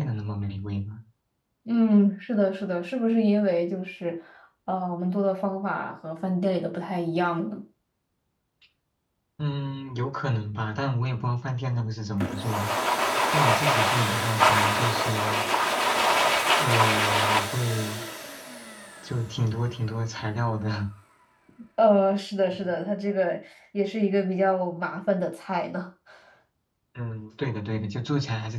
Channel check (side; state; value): both; identical; correlation 1.00